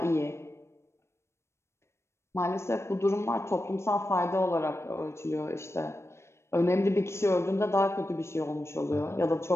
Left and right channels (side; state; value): right; late; 0.13 ms